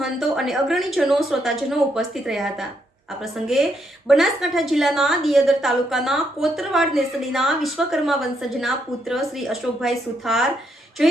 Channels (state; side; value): normal; both; correlation 0.76